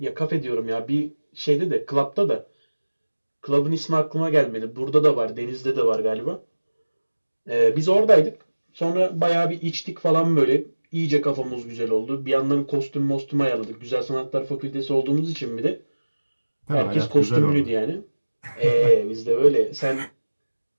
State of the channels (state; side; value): inverted; both; correlation -1.00